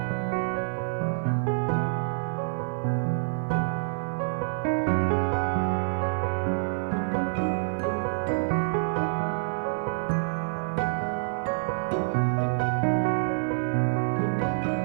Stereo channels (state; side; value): silent; left; 60 dB below the other